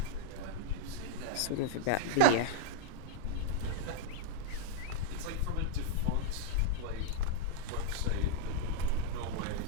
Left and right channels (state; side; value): different; both; correlation -0.01